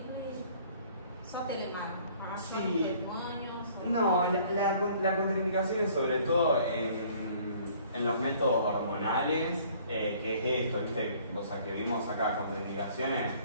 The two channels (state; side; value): inverted; both; correlation -0.56